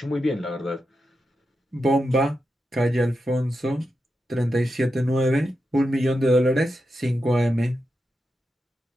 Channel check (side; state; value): both; normal; correlation 0.88